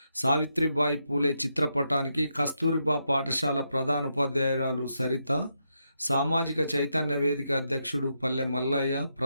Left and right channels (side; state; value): both; inverted; correlation -0.82